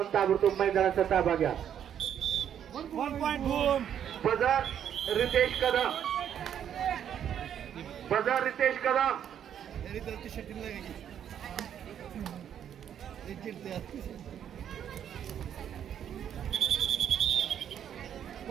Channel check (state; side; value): quieter; left; 9.4 dB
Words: ताबडतोब मैदानाचा ताबा घ्या. बजार रितेश कदम, बजार रितेश कदम.